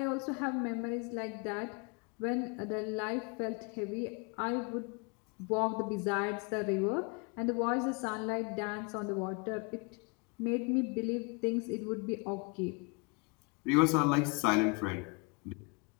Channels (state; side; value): quieter; right; 31.0 dB